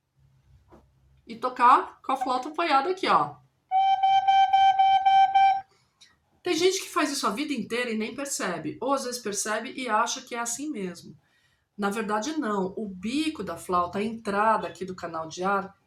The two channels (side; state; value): both; identical; correlation 1.00